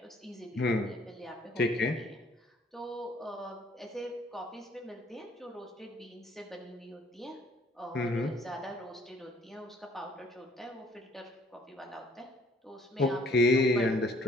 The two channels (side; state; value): both; normal; correlation 0.60